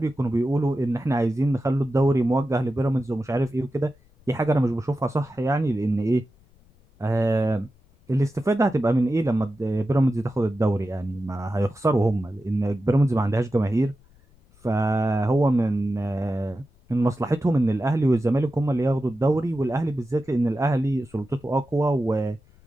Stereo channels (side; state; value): left; noise; rumble, 30 dB below the sound